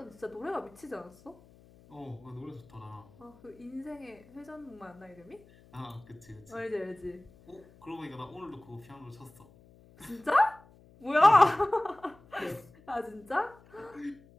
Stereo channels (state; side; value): noise; left; hum, 25 dB below the sound